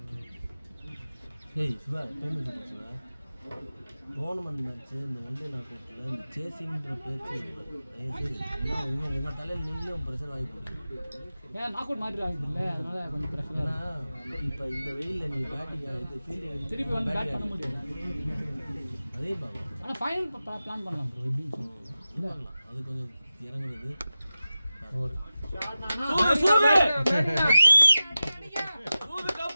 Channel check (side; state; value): both; inverted; correlation -0.94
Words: ஏய் Shiva time Shiva tournament match இந்த வண்டி நாட்டில் இந்த சேசிங்கிற பேச்சு உங்கள் தலையில் நீங்களும் ப்ரெஷர் வாங்கி போடுறீங்க ஏன் நாக் அவுட் மாதிரி ஆகுது இல்லை அதனால கொஞ்சம் பிரச்சனை ஏன்னா இப்போ இந்த வெயிலில் நீங்கள் பேட்டிங் இது ஃபீல்டிங் திருப்பி வந்து பேட் பண்ண முடியும் அதே பாங்க ஆனால் ஃபைனல் பிளான் பண்ணலாம் ப்ரோ எப்படின்னு பண்ணலாம் அது கொஞ்சம் இறங்குறது ஒரு